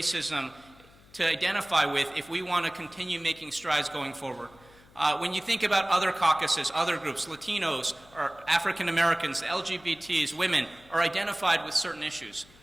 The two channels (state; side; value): noise; left; hum, 26 dB below the sound